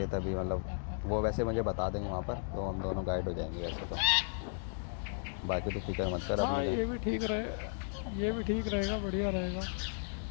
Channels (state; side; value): silent; right; digital silence